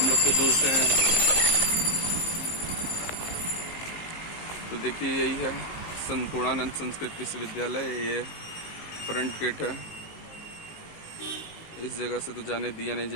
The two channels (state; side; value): late; right; 19 ms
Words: लोग तो दूर से हैं। तो देखिए यही है संपूर्णानंद संस्कृत विश्वविद्यालय। ये फ्रंट गेट है। इस जगह से तो जाने दिया नहीं